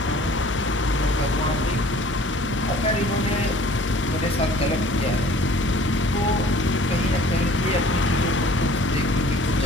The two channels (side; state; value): both; normal; correlation 0.50